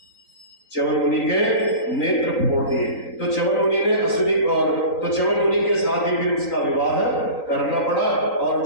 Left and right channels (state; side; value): late; right; 3.9 ms